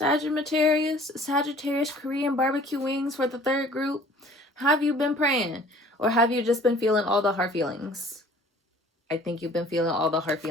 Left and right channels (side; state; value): both; normal; correlation 0.51